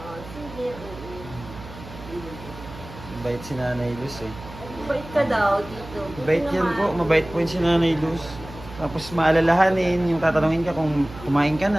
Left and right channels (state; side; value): noise; right; hum, 15 dB below the sound